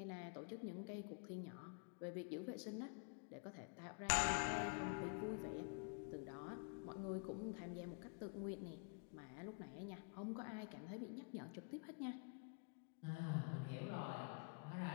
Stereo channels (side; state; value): right; quieter; 36.1 dB